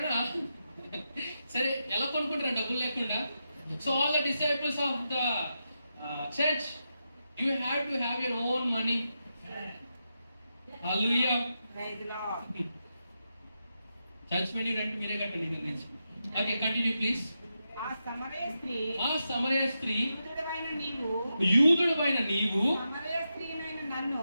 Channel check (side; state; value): both; inverted; correlation -0.87